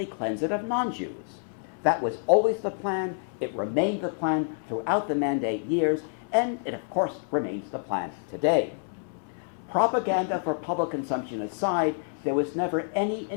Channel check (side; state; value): right; silent; 59 dB below the other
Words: cleanse it of non-Jews. That was always the plan. It remained the plan throughout the Mandate years, and it, of course, remains the plan today. Propaganda for public consumption aside, there was never any